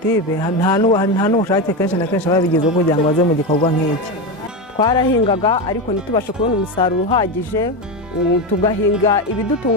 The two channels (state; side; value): normal; both; correlation 0.15